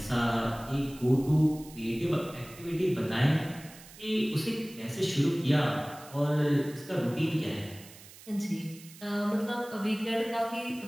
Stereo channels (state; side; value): noise; right; hiss, 19 dB below the sound